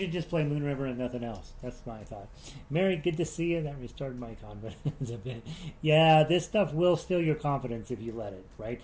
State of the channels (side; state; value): both; identical; correlation 1.00